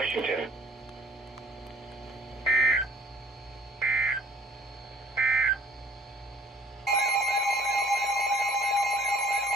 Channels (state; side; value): normal; both; correlation 0.54